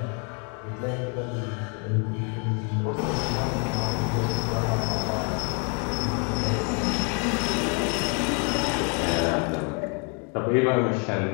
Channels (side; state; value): right; quieter; 37.0 dB